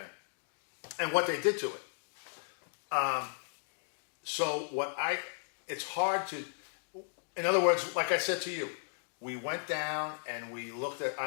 And what they did to it. So it's hard to, in other words, like I said to you, we went down and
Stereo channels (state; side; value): silent; right; digital silence